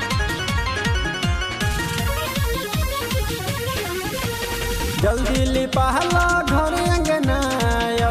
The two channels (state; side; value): identical; both; correlation 1.00